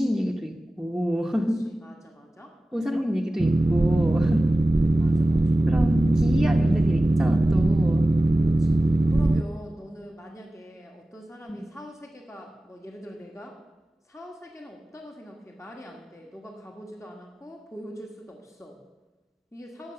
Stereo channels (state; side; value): normal; both; correlation 0.96